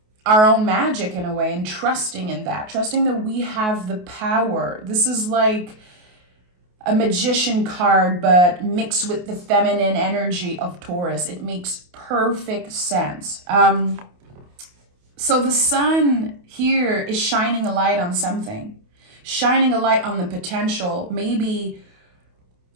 our own magic in a way, and trusting in that, trusting that we have the power. This is like a magician card, but mixed with the feminine energy of Taurus. It makes perfect sense. So the sun here is shining a light on something, shining a light on the potential, maybe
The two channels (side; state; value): left; late; 28 ms